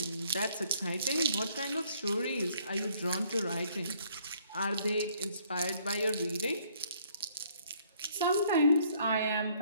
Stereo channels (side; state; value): both; inverted; correlation -0.64